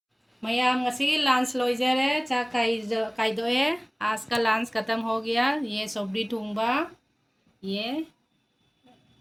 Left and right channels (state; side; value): identical; both; correlation 1.00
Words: मैम ngasi लंच लोइजरे चा कायदो है। आज का लंच ख़त्म हो गया। ये सब्जी थोंबा, ये